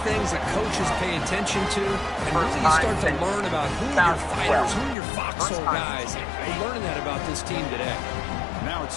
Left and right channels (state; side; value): drops out; right; at 5.0 s